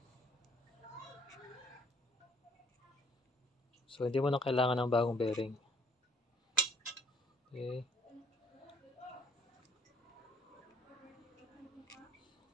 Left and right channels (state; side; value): normal; both; correlation 0.61